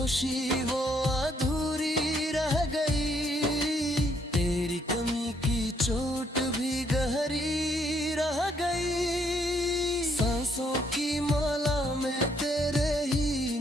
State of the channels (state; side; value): normal; both; correlation 0.70